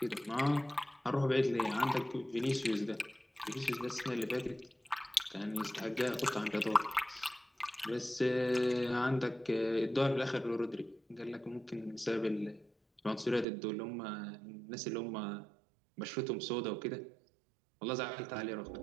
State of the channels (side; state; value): left; drops out; at 13.5 s